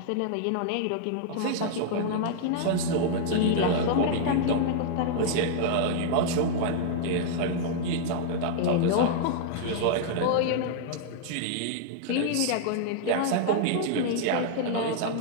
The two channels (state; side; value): different; both; correlation -0.01